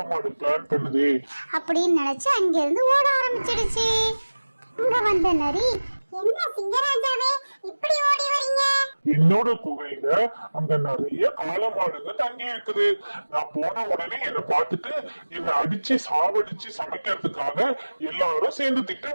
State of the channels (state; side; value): inverted; both; correlation -1.00